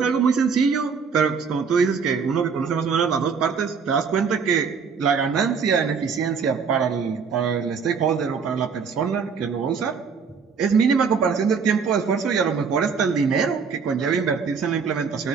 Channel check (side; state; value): left; quieter; 5.8 dB